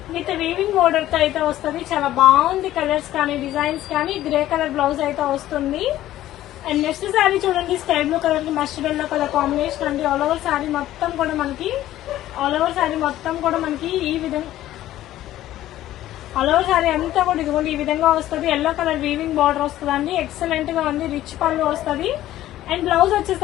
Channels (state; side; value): quieter; right; 13.9 dB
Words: విత్ వీవింగ్ బోర్డర్ తో అయితే వస్తుంది. చాలా బాగుంది కలర్స్ కానీ, డిజైన్స్ కానీ. గ్రే కలర్ బ్లౌజ్ అయితే వస్తుంది. అండ్ నెక్స్ట్ సారీ చూడండి, స్కై బ్లూ కలర్ కి మస్టర్డ్ ఎల్లో కలర్ కాంబినేషన్ అండి. ఆల్ ఓవర్ సారీ మొత్తం కూడా మనకి ఈ విధంగా, ఆల్ ఓవర్ సారీ అంతా కూడా ఇదిగోండి ఈ విధంగా వస్తుంది. ఎల్లో కలర్ వీవింగ్ బార్డర్ వస్తుందండి. ఎక్సలెంట్ గా ఉంది. రిచ్ పళ్ళు వస్తుంది. అండ్ బ్లౌజ్